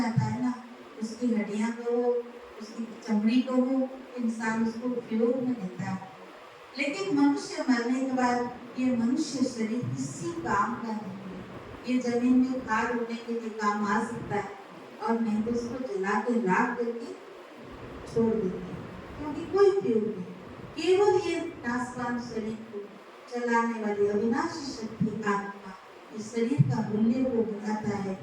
है ना, उसकी हड्डियां को हो, उसकी चमड़ी को हो, इंसान उसको उपयोग में लेता है, लेकिन मनुष्य मरने के बाद ये मनुष्य शरीर किसी काम का नहीं है। ये जमीन में खाद होने के लिए काम आ सकता है और नहीं तो उसको जला के राख करके छोड़ देते हैं, क्योंकि कोई उपयोग नहीं। केवल ये नाशवान शरीर को चलाने वाली अविनाशी शक्ति आत्मा इस शरीर का मूल्य को बताता है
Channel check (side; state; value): both; identical; correlation 1.00